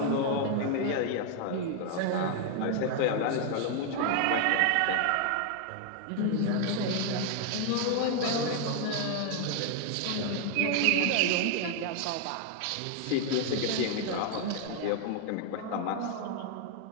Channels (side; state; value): both; different; correlation 0.00